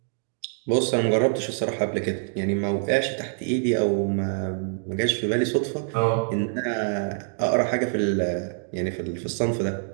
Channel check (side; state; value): left; silent; digital silence